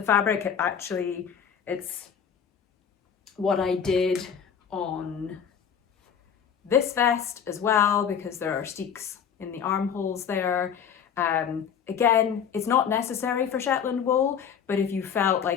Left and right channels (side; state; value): right; quieter; 7.6 dB